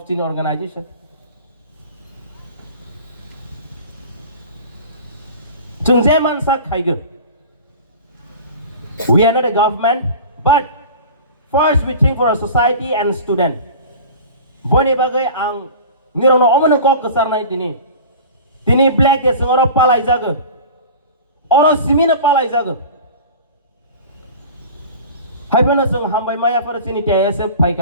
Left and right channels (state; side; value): inverted; both; correlation -0.38